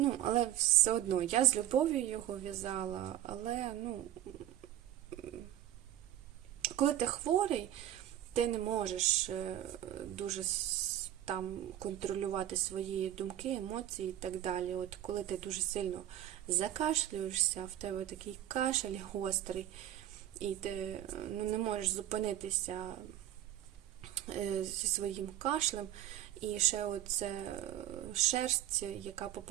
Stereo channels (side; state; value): left; quieter; 12.5 dB